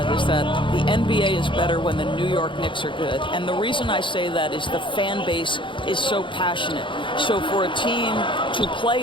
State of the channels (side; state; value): right; late; 0.24 ms